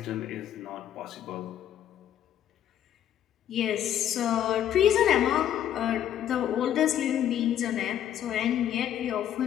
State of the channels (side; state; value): right; quieter; 10.8 dB